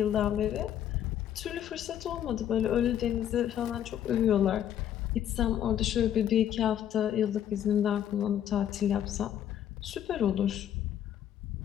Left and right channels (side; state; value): right; quieter; 10.4 dB